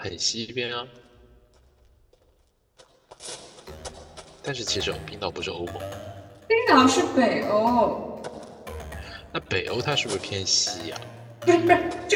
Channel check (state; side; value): identical; both; correlation 1.00